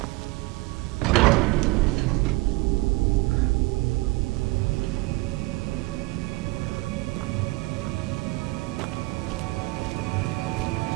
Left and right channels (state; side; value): quieter; left; 22.5 dB